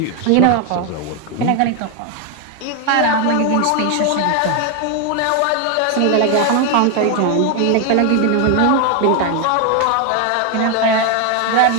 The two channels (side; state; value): both; different; correlation 0.01